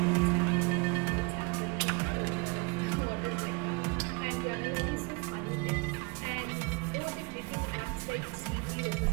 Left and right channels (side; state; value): left; quieter; 29.5 dB